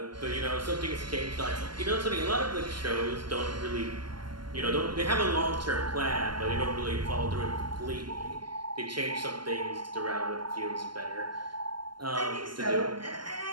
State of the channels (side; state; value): left; late; 0.72 ms